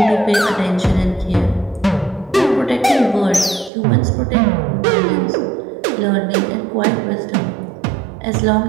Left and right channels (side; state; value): left; drops out; at 3.7 s